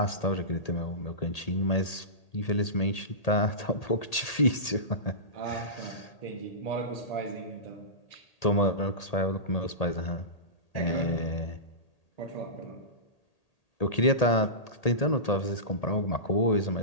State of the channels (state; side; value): late; right; 1.8 ms